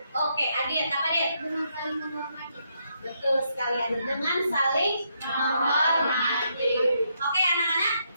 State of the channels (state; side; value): inverted; both; correlation -0.77